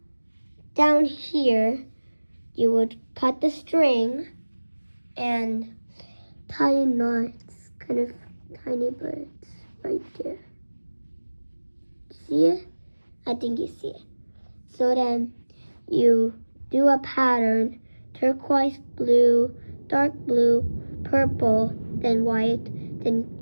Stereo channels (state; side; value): inverted; both; correlation -1.00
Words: down here, you would cut the string and tie knots, kind of tiny birds right there. See it? I think you see it. So then you do a pattern: turquoise, blue, dark blue, purple, then white,